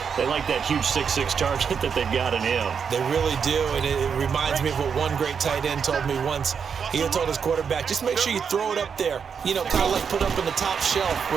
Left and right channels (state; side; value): quieter; left; 6.6 dB